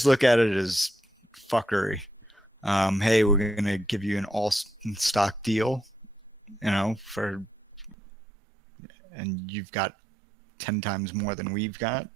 look at it as fuckery. Hey, we're going to give you an all stock deal, and you've got 10 times more than we've got.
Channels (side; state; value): left; drops out; at 8.0 s